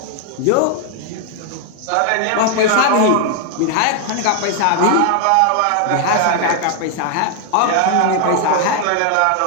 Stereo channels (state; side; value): different; both; correlation 0.00